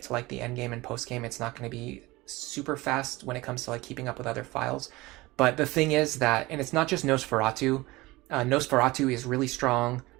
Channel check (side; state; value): left; quieter; 20.9 dB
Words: to like the end game and post game, it's not going to be super fast when it comes to like keeping up with other files. But the thing is that, and it's not just Nosferatu. Nosferatu is really strong.